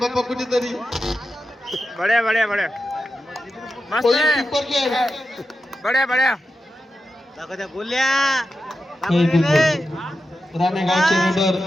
कुठेतरी. बड्या बड्या बड्या मस्त बड्या बड्या बोलल्या राणेगावचे रेडर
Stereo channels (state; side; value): normal; both; correlation 0.90